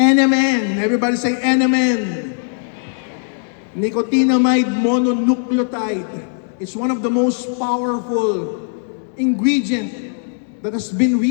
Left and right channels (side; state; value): right; silent; digital silence